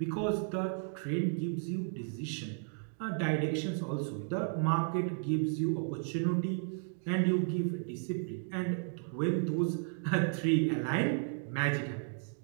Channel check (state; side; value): silent; left; digital silence